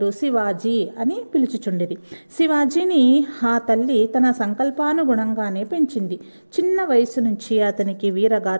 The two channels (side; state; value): both; inverted; correlation -1.00